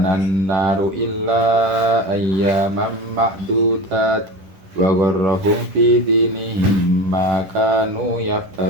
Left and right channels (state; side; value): late; left; 10 ms